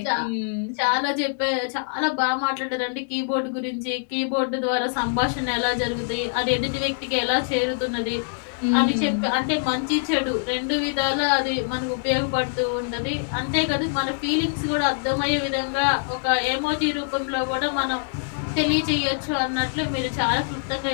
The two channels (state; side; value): silent; right; digital silence